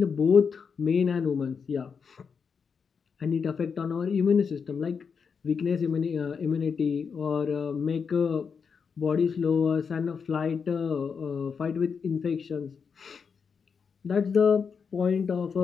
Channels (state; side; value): quieter; right; 6.0 dB